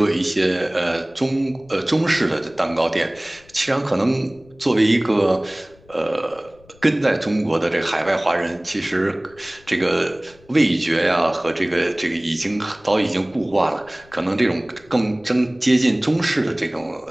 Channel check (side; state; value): left; noise; rumble, 27 dB below the sound